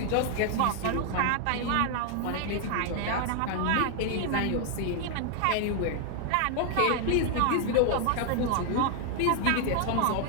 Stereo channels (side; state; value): both; different; correlation 0.00